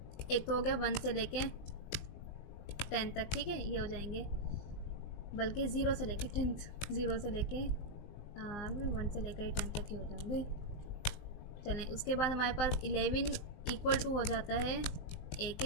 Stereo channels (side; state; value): right; late; 19 ms